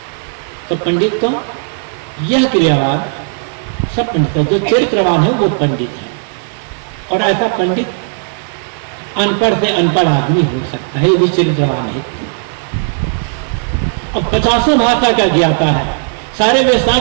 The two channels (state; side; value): silent; left; digital silence